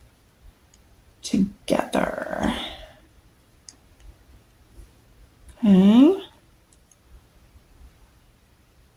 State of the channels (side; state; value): both; identical; correlation 1.00